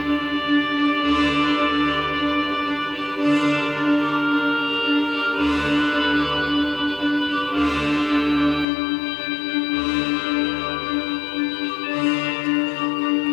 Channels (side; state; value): right; drops out; at 8.7 s